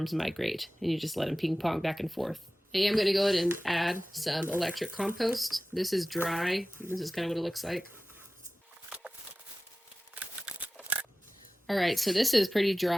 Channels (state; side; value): normal; both; correlation 0.96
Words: migrate. And you just let them ping pong back and forth. I am going to go ahead and add some electric compost. This is dry. This is kind of what it looks like. All right, so this is pretty